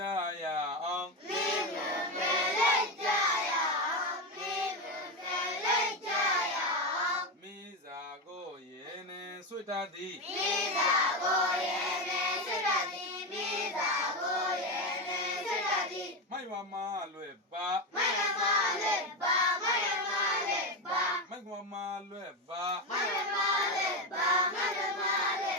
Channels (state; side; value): normal; both; correlation 0.14